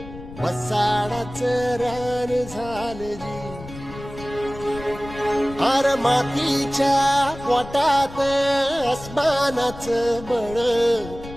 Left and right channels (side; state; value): left; noise; rumble, 14 dB below the sound